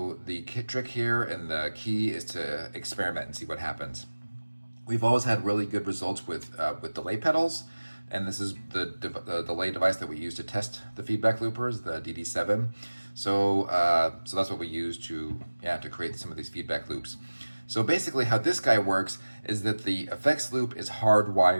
the trick here and the key is to experiment and see what happens. We've always had really good results with delay pedals, and this is the delay device that we use to test the feedback loopers, the DD7. So that's what we use to create some of these feedback loops. So basically how this guy works is that the effects loop is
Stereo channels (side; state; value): both; inverted; correlation -1.00